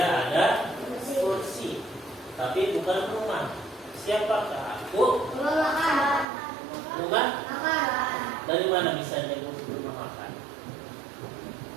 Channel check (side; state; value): left; drops out; at 6.2 s